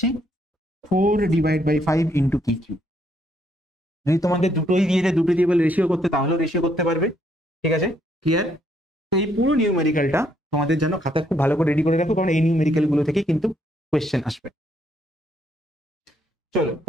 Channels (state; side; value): normal; both; correlation 0.71